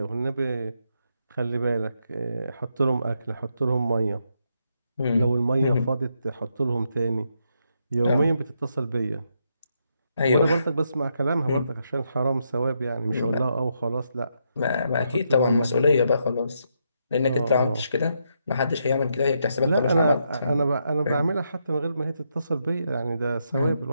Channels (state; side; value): inverted; both; correlation -0.79